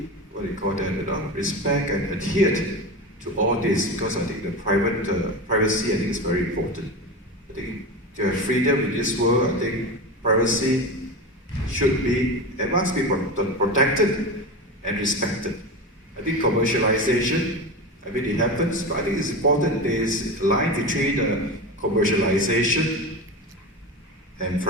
respect and adhere to all this, because I think the privacy, I think, is very important. I think to have freedom in this world, I think privacy should be and must be protected and respected. I think commercialization, I mean, it happens, but I think it's important there is a line between commercialization and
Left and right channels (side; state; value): both; normal; correlation 0.24